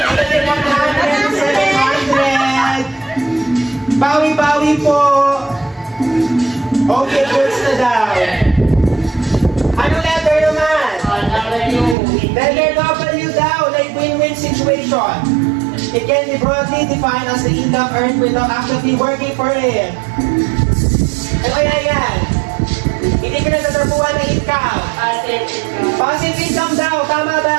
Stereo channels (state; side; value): drops out; left; at 12.0 s